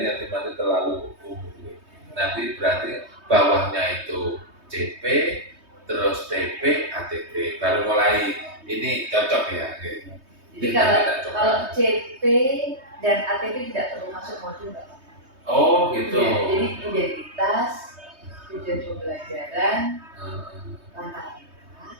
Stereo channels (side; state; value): left; late; 3.2 ms